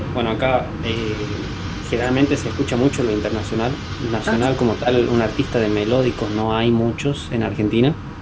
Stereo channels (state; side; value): identical; both; correlation 1.00